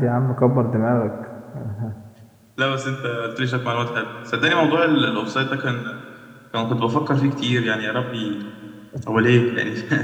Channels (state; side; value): identical; both; correlation 1.00